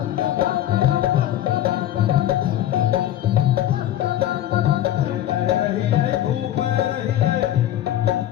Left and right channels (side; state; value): right; quieter; 12.4 dB